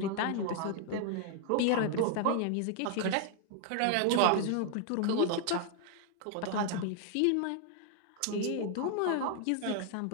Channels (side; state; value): both; different; correlation 0.00